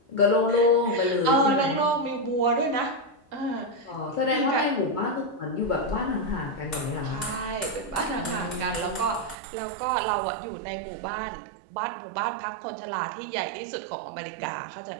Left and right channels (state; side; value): drops out; left; at 9.3 s